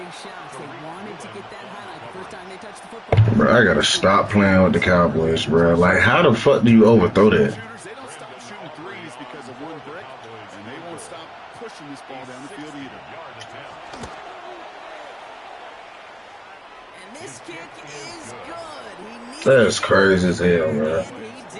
shot. They wanted to get that highlight the first time they touched the football. Bro, I gotta stop playing with the Cowboys, bro. Like, how the fuck do you overthrow that? They don't stop shooting threes because of one brick, and they won't stop pushing this ball down the field either. And this kick is good. He needed That's crazy as hell, bro. and he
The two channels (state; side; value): identical; both; correlation 1.00